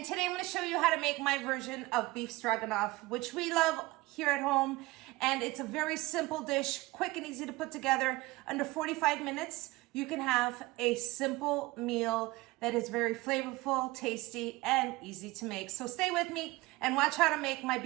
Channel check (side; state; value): left; quieter; 20.9 dB